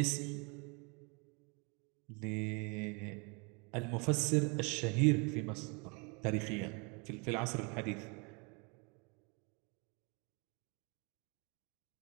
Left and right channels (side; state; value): left; quieter; 32.2 dB